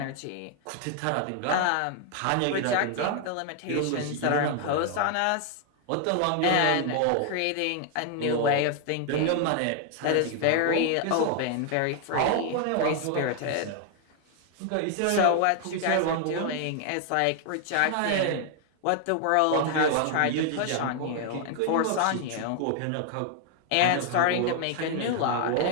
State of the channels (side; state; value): both; different; correlation 0.00